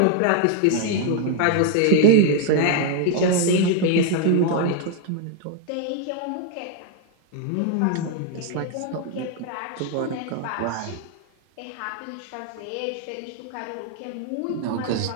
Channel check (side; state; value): both; different; correlation 0.00